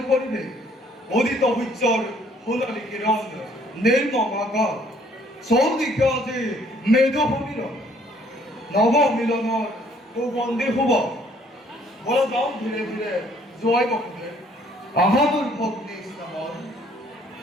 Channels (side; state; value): both; normal; correlation 0.62